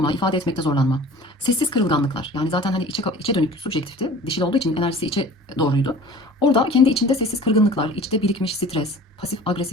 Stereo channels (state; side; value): normal; both; correlation 0.44